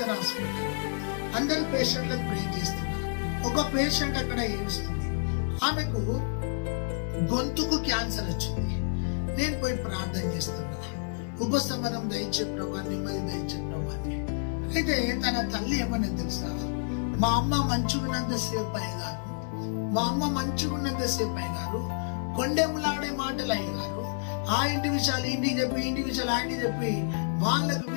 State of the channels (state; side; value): silent; right; 58 dB below the other